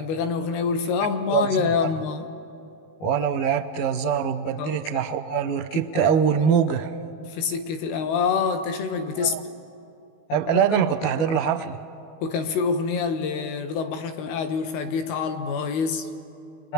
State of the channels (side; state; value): right; late; 19 ms